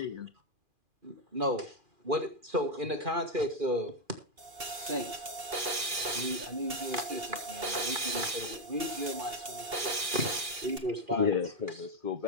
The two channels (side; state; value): left; late; 2.7 ms